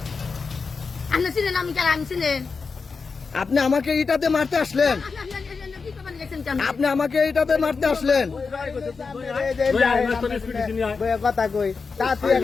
আপনি চিনেন আমি কেন আমি চিনেন আপনি আমাকে ইটাতে মারতে আসলেন, আপনি আমাকে ইটাতে মারতে আসলেন, কথা কই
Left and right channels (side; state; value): right; quieter; 4.8 dB